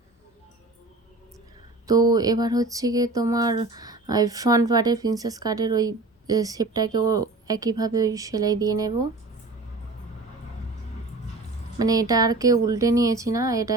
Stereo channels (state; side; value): quieter; left; 3.3 dB